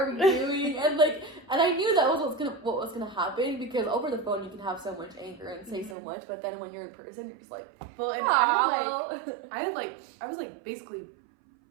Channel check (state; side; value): drops out; left; at 6.0 s